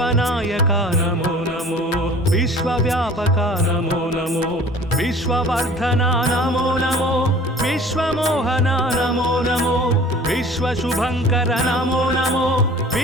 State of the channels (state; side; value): normal; both; correlation 0.46